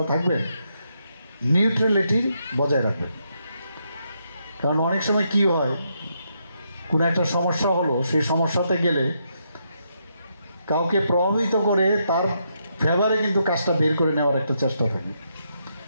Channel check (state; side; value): inverted; both; correlation -0.79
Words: থাকবেন, নিউট্রালিটি বজায় রাখবেন। কারণ অনেক সময় কি হয়, কোনো একটা সমস্যা হলো, সেই সমস্যাতে গেলে কাউকে প্রভাবিত করে তার ফেভারে কিন্তু কাজটা বের করে নেওয়ার একটা চেষ্টা থাকে।